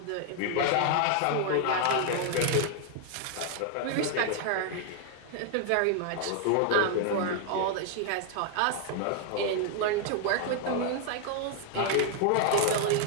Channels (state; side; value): different; both; correlation 0.00